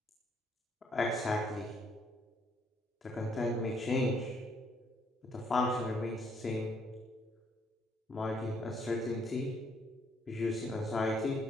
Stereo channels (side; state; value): both; normal; correlation 0.69